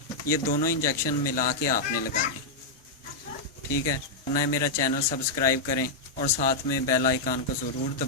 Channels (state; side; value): quieter; right; 3.1 dB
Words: ये दोनों इंजेक्शन मिला के आपने लगाने हैं। ठीक है, ना मेरा चैनल सब्सक्राइब करें और साथ में बेल आइकन को ज़रूर